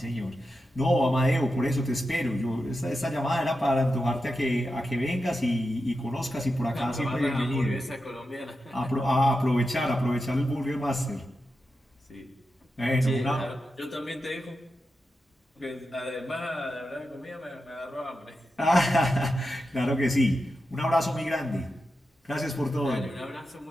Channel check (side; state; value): both; normal; correlation 0.89